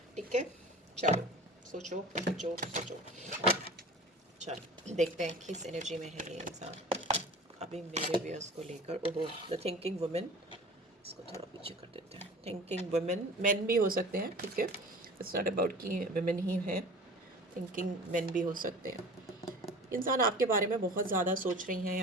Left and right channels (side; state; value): both; normal; correlation 0.40